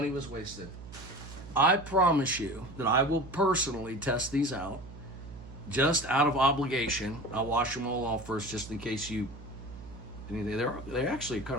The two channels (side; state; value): right; noise; hum, 14 dB below the sound